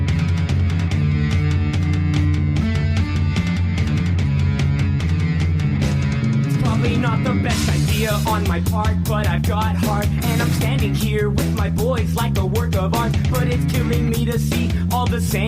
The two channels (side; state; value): both; identical; correlation 1.00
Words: Probably not the best idea on my part, but I've got heart, and I'm standing here with my boys like a work of art. But it's killing me to see all the